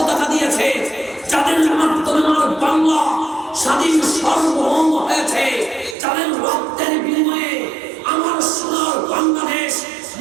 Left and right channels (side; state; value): left; drops out; at 6.0 s